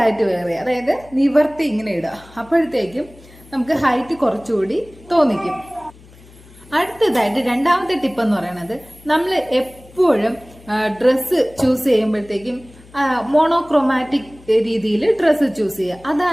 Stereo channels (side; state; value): left; noise; hum, 24 dB below the sound